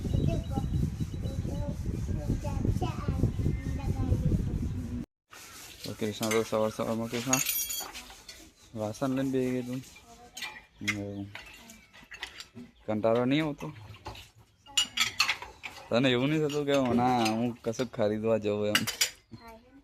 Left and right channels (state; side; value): identical; both; correlation 1.00